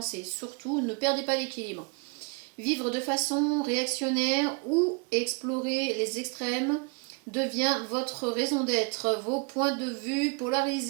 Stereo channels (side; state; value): left; quieter; 34.5 dB